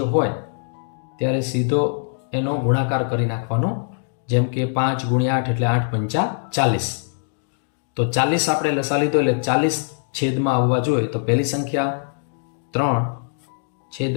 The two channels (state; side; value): silent; right; digital silence